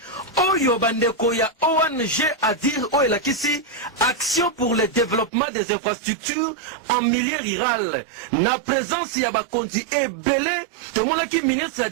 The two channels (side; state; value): left; drops out; at 5.3 s